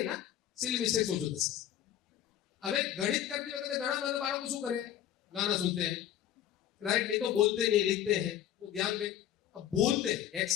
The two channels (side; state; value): right; quieter; 11.0 dB